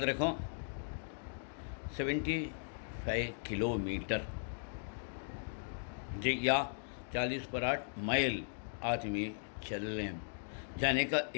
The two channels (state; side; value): silent; right; digital silence